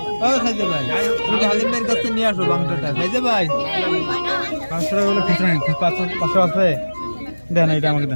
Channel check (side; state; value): both; inverted; correlation -1.00